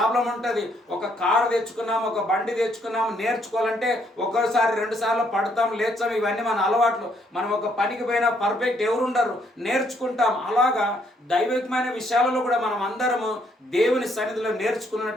ఉంటుంది. ఒక కారు తెచ్చుకున్నాం, ఒక బండి తెచ్చుకున్నాం, నేర్చుకోవాలంటే ఒక్కోసారి 2 సార్లు పడతాం, లేచాం. ఇవన్నీ మన అలవాట్లు. మనం ఒక పనికి పోయినా పర్ఫెక్ట్ ఎవరుండరు, నేర్చుకుంటాం. అలాగా దైవికమైన విషయాలలో కూడా మనం అందరము దేవుని సన్నిధిలో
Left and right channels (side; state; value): both; normal; correlation 0.70